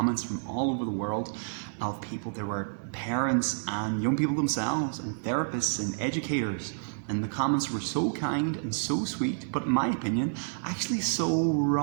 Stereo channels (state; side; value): silent; left; digital silence